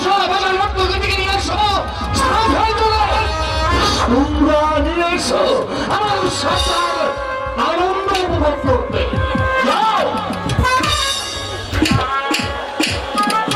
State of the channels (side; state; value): both; identical; correlation 1.00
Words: তোমরা নিয়ে এসো আমার সরকার আনন্দ উপভোগ করতে। যাও।